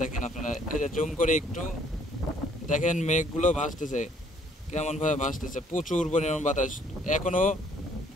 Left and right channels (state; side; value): normal; both; correlation 0.63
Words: দেখেন আপনারা। এই যে জুম করে একটু দেখেন, মেঘগুলো ভাসতেছে, কেমন ভাবে ভাসতেছে। প্রচুর পরিমাণ বাতাস, এখনো